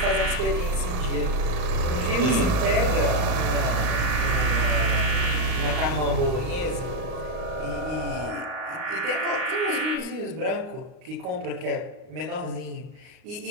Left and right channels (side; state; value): left; late; 40 ms